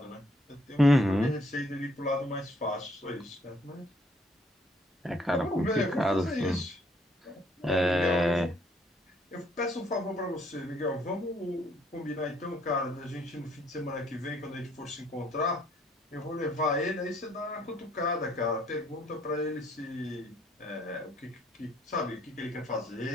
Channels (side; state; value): both; normal; correlation 0.66